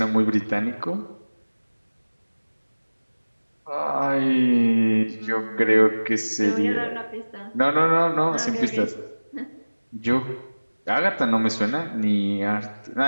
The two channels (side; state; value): both; inverted; correlation -1.00